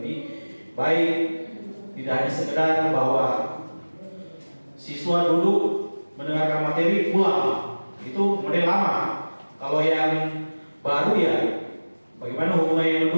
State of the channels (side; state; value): both; inverted; correlation -1.00